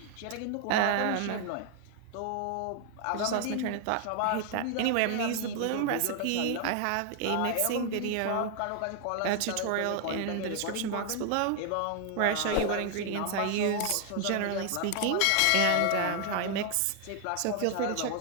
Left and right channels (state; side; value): different; both; correlation 0.00